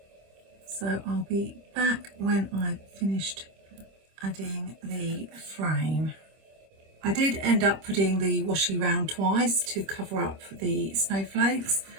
So I'll be back when I've finished adding the frame. I did end up putting the washi round twice to cover up the snowflakes,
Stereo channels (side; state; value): left; late; 26 ms